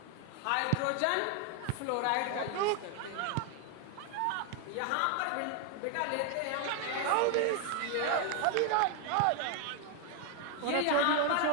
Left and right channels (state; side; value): different; both; correlation 0.01